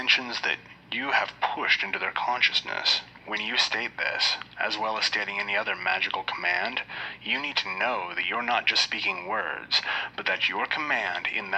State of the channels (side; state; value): both; identical; correlation 1.00